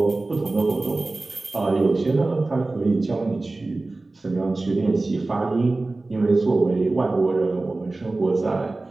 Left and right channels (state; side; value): quieter; left; 3.2 dB